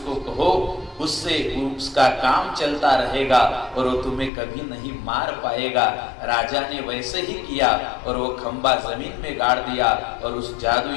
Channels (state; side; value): drops out; right; at 4.3 s